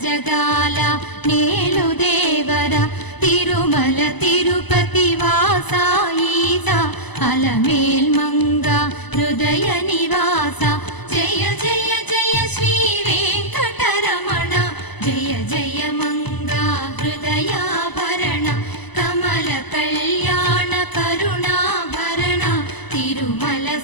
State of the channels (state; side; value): late; right; 1.0 ms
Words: జగాల నేలు దేవర తిరుమల తిరుపతి వాసా ఈసా అలమేల్ మంగ హృదయ నివాస జయ జయ జయ శ్రీ వెంకటరమణ జయ జయ మంగ హృదయాభరణ కమల కళ్యాణ కరుణాభరణ తిరుమల